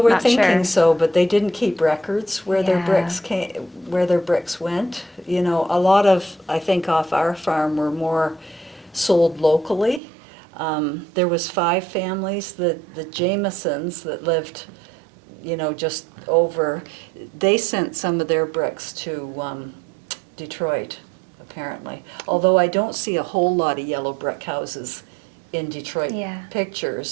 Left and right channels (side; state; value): left; drops out; at 10.0 s